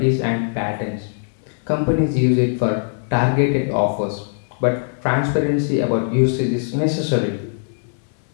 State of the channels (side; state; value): right; silent; digital silence